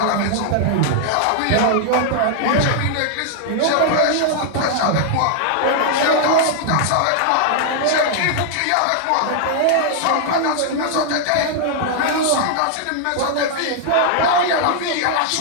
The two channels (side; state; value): both; different; correlation -0.01